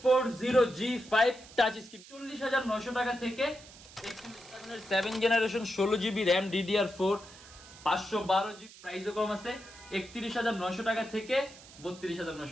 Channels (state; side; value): noise; right; hiss, 19 dB below the sound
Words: touch screen 40,900 টাকা থেকে 7 generation 16GB RAM DDR4 512GB প্রাইসও কম আছে 31,900 টাকা থেকে